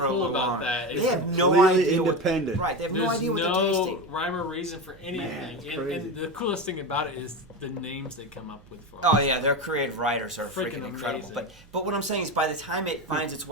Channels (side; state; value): right; noise; hum, 25 dB below the sound